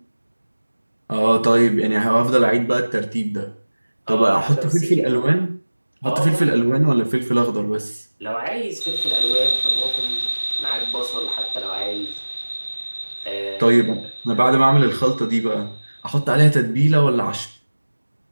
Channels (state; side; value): inverted; both; correlation -1.00